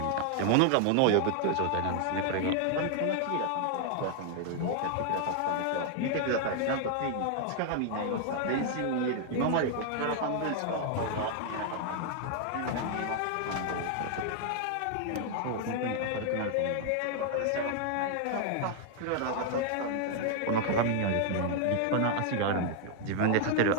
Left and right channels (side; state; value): both; different; correlation 0.00